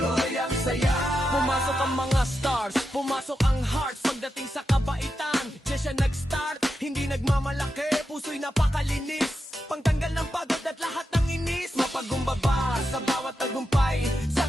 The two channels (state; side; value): normal; both; correlation 0.88